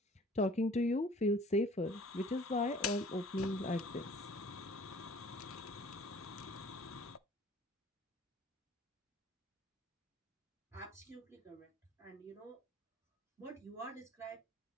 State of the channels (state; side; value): normal; both; correlation 0.51